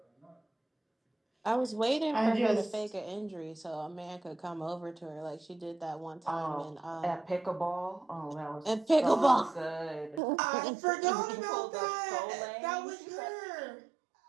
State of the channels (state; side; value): drops out; left; at 10.2 s